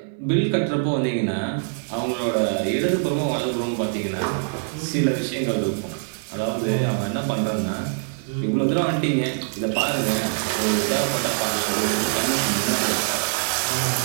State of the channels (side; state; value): left; silent; digital silence